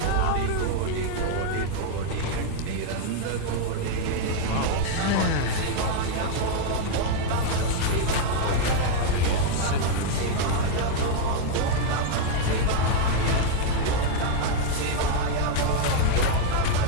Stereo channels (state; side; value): different; both; correlation 0.00